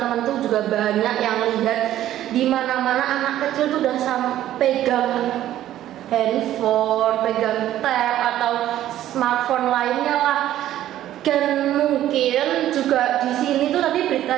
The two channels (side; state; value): left; quieter; 12.9 dB